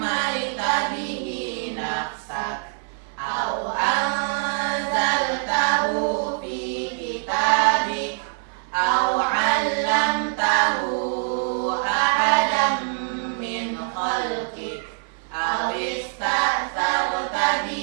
bihi nafsak aw anzaltahu fi kitabik aw 'allamtahu ahadan min khalqik aw ista'tharta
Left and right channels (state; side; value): silent; left; 60 dB below the other